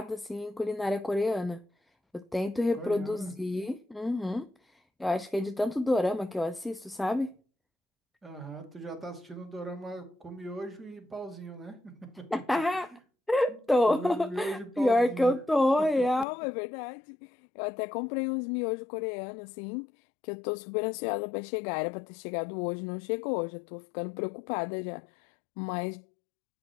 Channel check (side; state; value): right; drops out; at 16.2 s